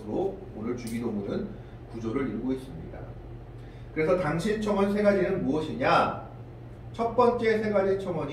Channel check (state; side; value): identical; both; correlation 1.00